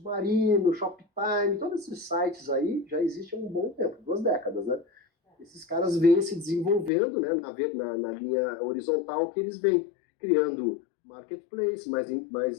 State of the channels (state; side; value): drops out; right; at 6.9 s